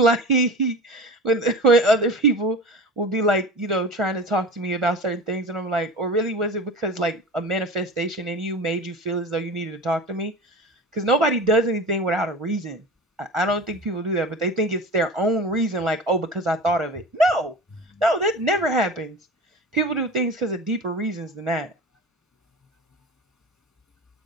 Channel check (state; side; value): normal; both; correlation 0.34